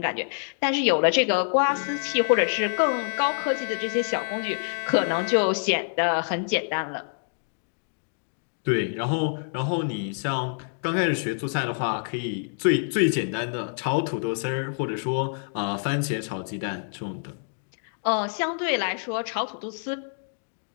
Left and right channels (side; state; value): right; silent; digital silence